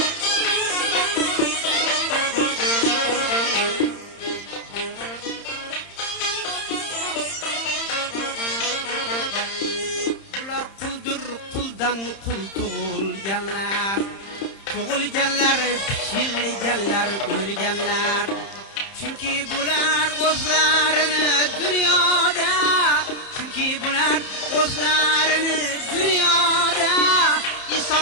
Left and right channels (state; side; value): late; right; 31 ms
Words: Bular quldir, quldan qul tug'ilganlar, tug'ilganlar, pichilganlar, o'lganlar. Chunki bular o'zlarini dunyoda, chunki bular o'zlarini dunyoda